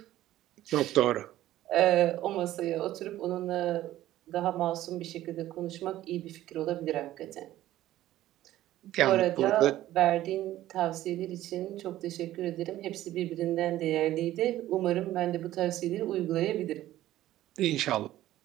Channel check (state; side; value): quieter; left; 14.3 dB